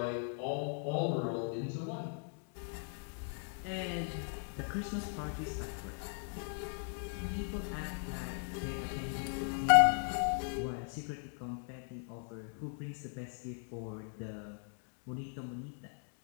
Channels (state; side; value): silent; right; 52 dB below the other